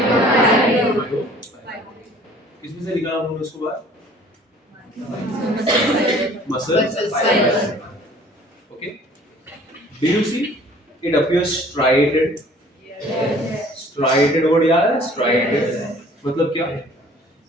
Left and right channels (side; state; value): both; normal; correlation 0.52